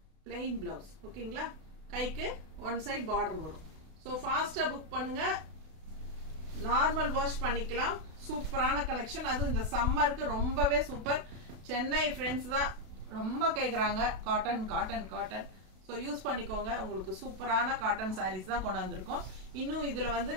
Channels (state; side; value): late; left; 32 ms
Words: plain blouse. ஓகேங்களா? கைக்கு ஒன் சைட் பார்டர் வரும். ஸோ ஃபாஸ்ட்டாக புக் பண்ணுங்க, நார்மல் வாஷ் பண்ணிக்கலாம். சூப்பரான கலெக்ஷன். அதுவும் இந்த சம்மருக்கு ரொம்பவே சூப்பர். சென்னை ஃப்ரெண்ட்ஸ் தான் ரொம்ப கேட்குறாங்க cotton cotton cotton. So use பண்ணிக்கோங்க. உங்களுக்கு சூப்பரான காட்டன் சாரீஸ் தான் கொண்டாந்துருக்கோம். இன்னும் இதில் வந்து